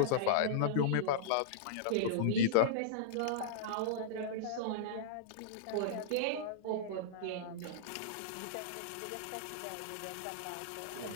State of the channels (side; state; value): both; different; correlation -0.03